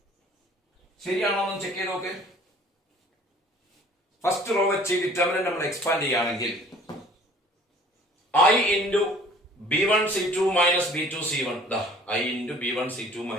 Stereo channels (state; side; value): normal; both; correlation 0.52